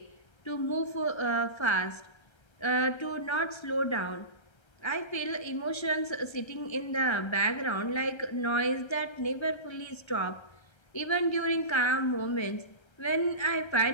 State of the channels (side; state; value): right; late; 1.3 ms